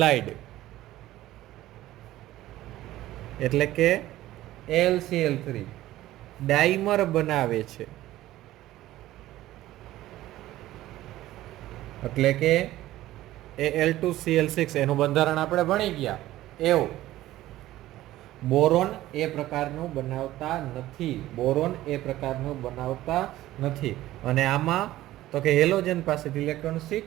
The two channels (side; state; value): left; quieter; 15.3 dB